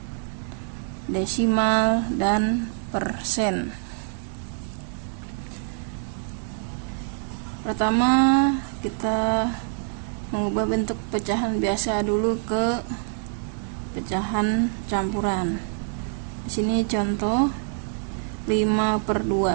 desimal, dan persen. Pertama, kita mengubah bentuk pecahan biasa dulu ke pecahan campuran. Sini contoh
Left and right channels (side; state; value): left; silent; 58 dB below the other